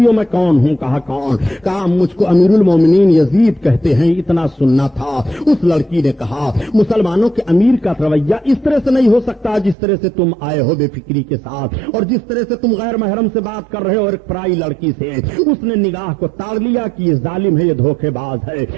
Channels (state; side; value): drops out; left; at 9.8 s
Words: ہو میں کون ہوں؟ کہا کون؟ کہا مجھ کو امیر المومنین یزید کہتے ہیں. اتنا سننا تھا. اس لڑکی نے کہا مسلمانوں کے امیر کا رویہ اس طرح سے نہیں ہو سکتا جس طرح سے تم آئے ہو بے فکری کے ساتھ اور جس طرح سے تم غیر محرم سے بات کر رہے ہو اور ایک پرائی لڑکی سے. اس نے نگاہ کو تاڑ لیا کہ یہ ظالم ہے, یہ دھوکے باز ہے,